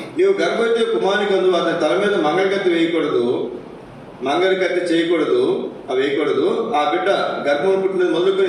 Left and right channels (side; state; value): both; identical; correlation 1.00